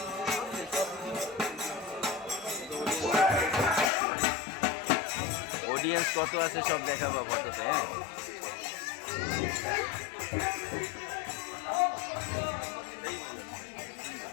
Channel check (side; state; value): right; drops out; at 3.9 s